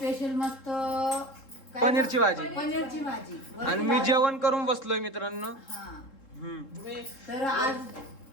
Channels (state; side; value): late; right; 3.7 ms